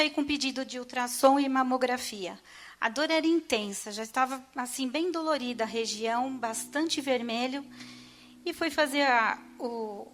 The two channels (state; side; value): identical; both; correlation 1.00